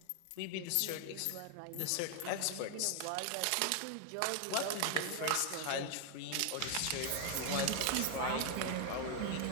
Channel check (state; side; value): different; both; correlation 0.00